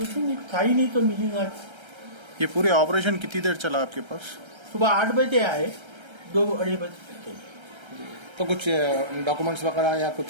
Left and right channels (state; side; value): late; left; 1.3 ms